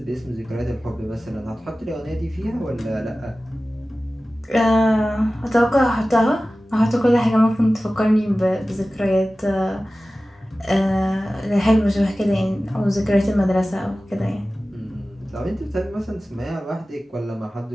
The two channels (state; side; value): normal; both; correlation 0.96